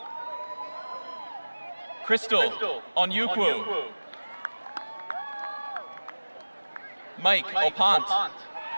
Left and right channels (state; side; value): inverted; both; correlation -1.00